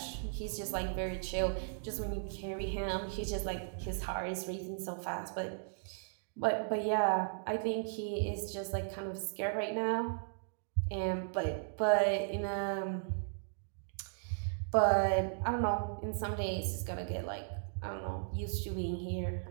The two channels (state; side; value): silent; left; digital silence